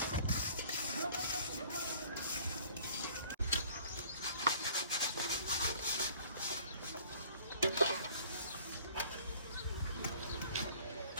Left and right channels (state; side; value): inverted; both; correlation -0.53